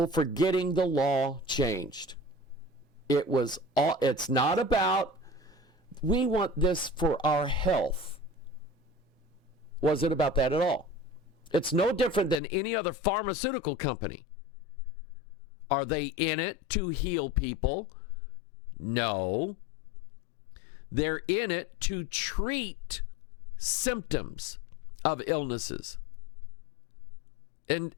for getting the law changed. It's not about, we want this for our health. Wasn't about that at all. It's no different than any other pharmaceutical company. Are they in it to heal people? No. They're in it to treat symptoms of illnesses. And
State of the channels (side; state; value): right; drops out; at 12.4 s